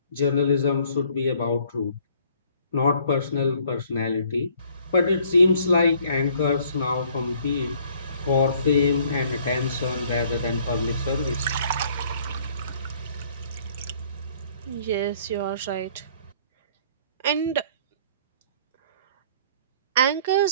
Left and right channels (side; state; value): both; inverted; correlation -0.60